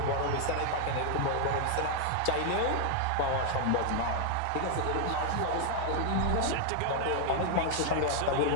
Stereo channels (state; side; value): different; both; correlation 0.00